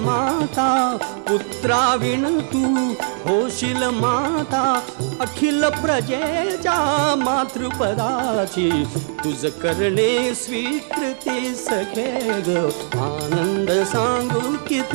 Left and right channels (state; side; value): silent; left; digital silence